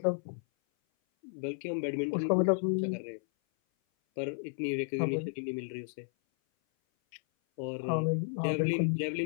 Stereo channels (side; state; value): right; silent; 56 dB below the other